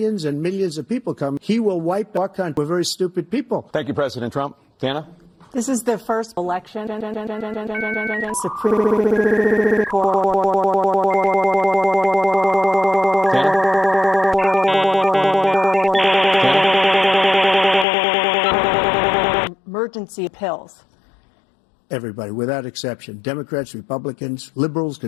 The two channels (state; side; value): drops out; right; at 17.9 s